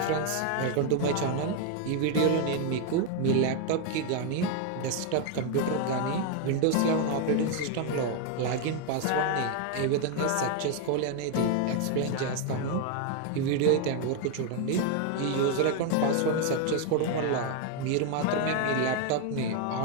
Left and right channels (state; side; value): different; both; correlation 0.01